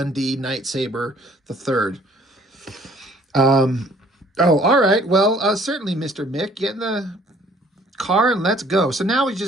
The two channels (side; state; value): both; normal; correlation 0.58